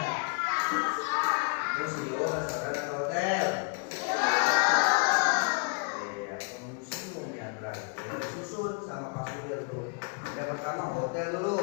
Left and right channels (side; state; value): right; quieter; 38.8 dB